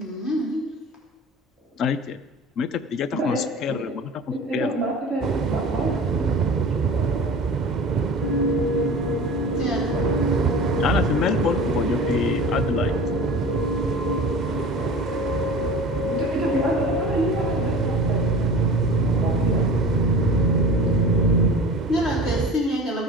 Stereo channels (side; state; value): both; normal; correlation 0.37